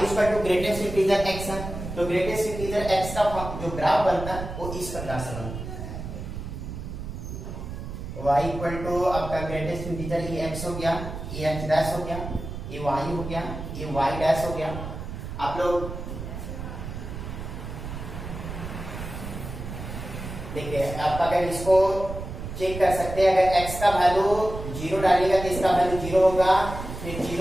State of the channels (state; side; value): noise; right; rumble, 8 dB below the sound